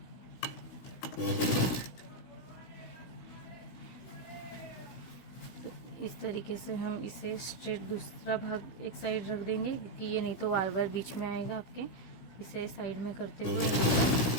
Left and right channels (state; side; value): late; right; 16 ms